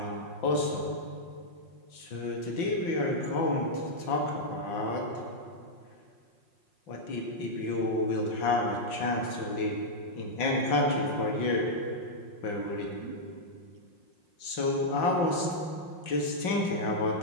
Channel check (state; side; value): late; right; 5.5 ms